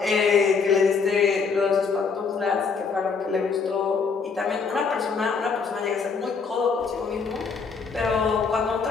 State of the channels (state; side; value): quieter; right; 5.3 dB